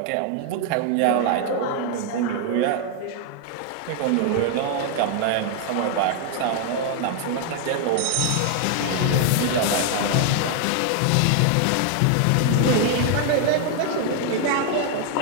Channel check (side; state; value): both; different; correlation 0.00